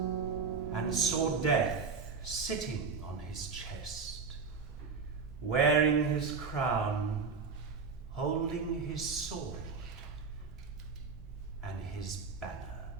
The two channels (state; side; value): quieter; left; 5.1 dB